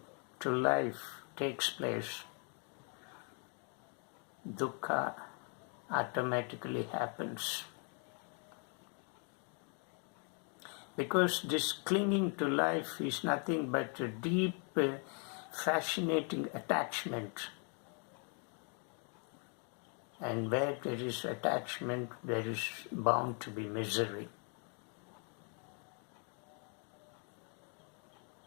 to life takes place, dukkha automatically happens. Because this clinging to life is nothing but a deep, fascinating attachment. And where there is attachment, there is bound to be misery.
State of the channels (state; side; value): quieter; right; 39.4 dB